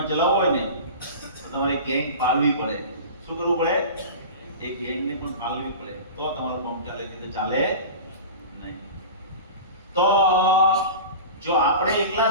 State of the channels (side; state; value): both; inverted; correlation -0.33